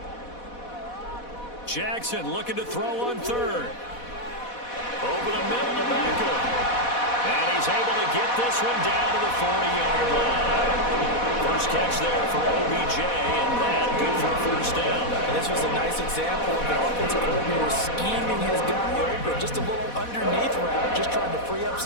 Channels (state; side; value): late; right; 4.1 ms